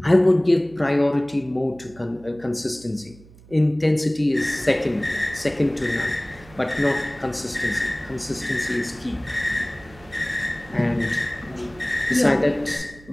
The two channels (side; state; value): right; noise; hum, 23 dB below the sound